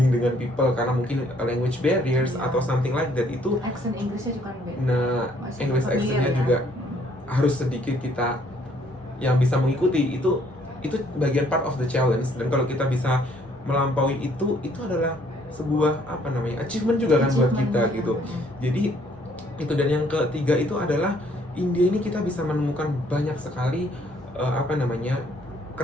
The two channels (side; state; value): both; normal; correlation 0.64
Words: dengan people karena mungkin language barriers atau something like that, itu accent Inggrisnya juga beda. nah English accentnya juga harus sedikit kita yang bisa mengikuti. Itu bagian part of the challenge. Dan kalau kita bisa melampaui itu adalah sebuah apa namanya, achievement juga kan buat kita gitu. Jadi itu. Dan yang ketiga itu adalah India ini kita bisa menemukan banyak sekali apa namanya,